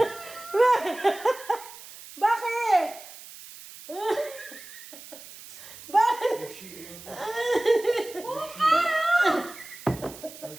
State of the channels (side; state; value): right; noise; hiss, 16 dB below the sound